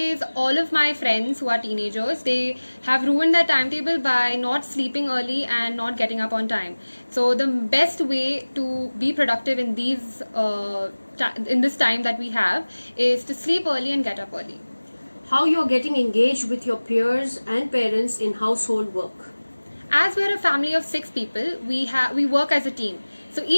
all of my friends who are teenagers, they have ruined their timetable by not sleeping early and not getting up on time. So the best way to be productive in this time that we have is to sleep early and get up early. How you are getting engaged with your peers and parents in household work? As we're a family of 6 people, we work as a team. So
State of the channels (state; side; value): inverted; both; correlation -1.00